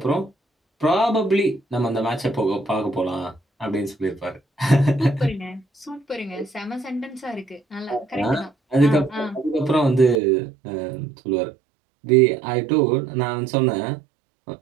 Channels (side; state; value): left; drops out; at 10.2 s